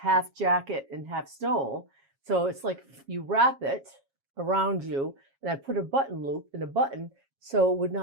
jacket and half stole. So it's like you wrap it around you, and I put a button loop in a button so it would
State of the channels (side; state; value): left; late; 7.3 ms